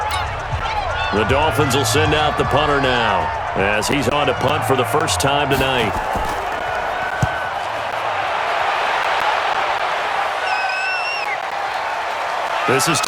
The Dolphins will send out the punter now as he's on to punt for the first time tonight. This is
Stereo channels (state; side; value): identical; both; correlation 1.00